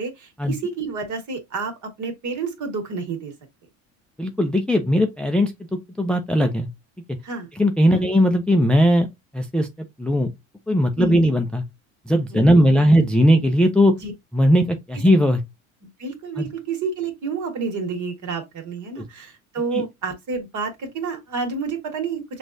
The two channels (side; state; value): both; normal; correlation 0.80